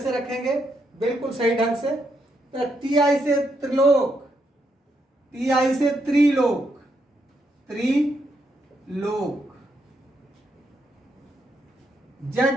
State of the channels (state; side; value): normal; both; correlation 0.79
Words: रखेंगे बिल्कुल सही ढंग से। तो टी आई से त्रिलोक, टी आई से त्रिलोक, त्रिलोक।